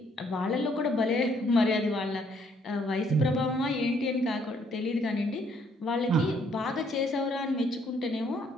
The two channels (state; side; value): normal; both; correlation 0.67